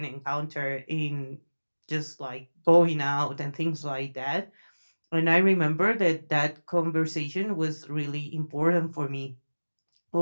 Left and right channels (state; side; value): inverted; both; correlation -1.00